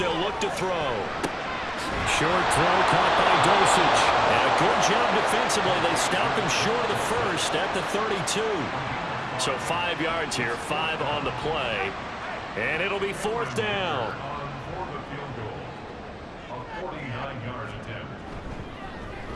look to throw. Short throw caught by Dosage. And a good job defensively. They stop him short of the first at the 32. So 5 yards here, 5 on the play. And it'll be 4th down.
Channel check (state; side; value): identical; both; correlation 1.00